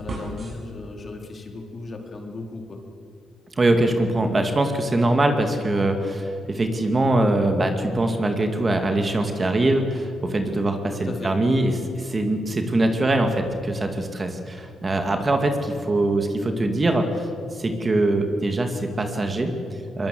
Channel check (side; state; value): both; normal; correlation 0.88